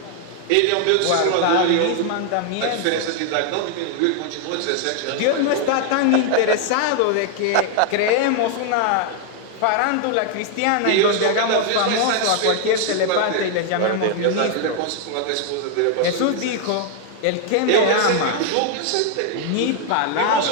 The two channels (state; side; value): different; both; correlation 0.00